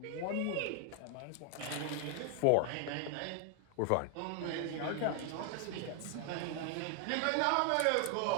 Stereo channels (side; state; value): both; different; correlation 0.00